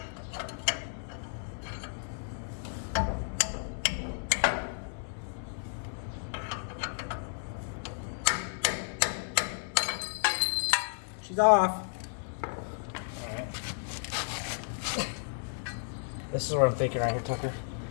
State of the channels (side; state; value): right; silent; 56 dB below the other